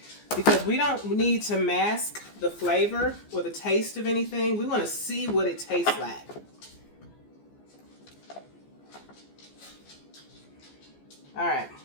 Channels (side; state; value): right; late; 14 ms